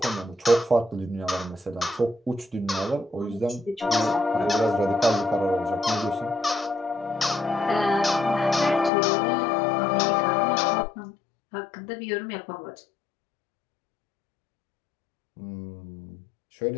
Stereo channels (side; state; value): right; drops out; at 8.9 s